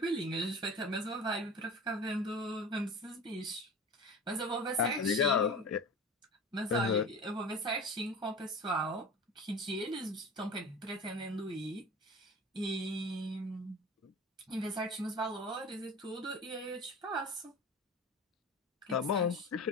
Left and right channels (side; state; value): both; normal; correlation 0.36